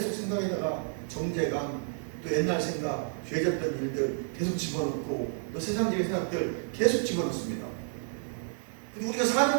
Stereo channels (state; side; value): silent; left; 57 dB below the other